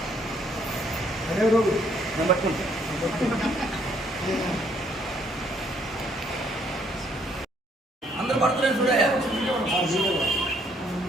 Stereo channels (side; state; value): both; normal; correlation 0.67